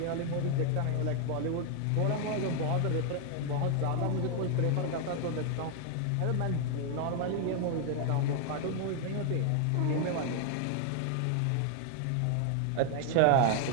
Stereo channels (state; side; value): different; both; correlation 0.00